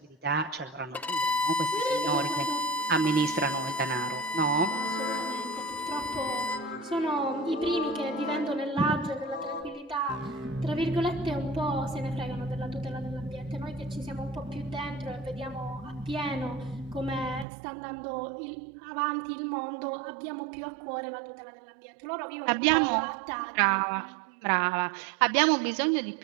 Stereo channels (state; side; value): drops out; left; at 17.4 s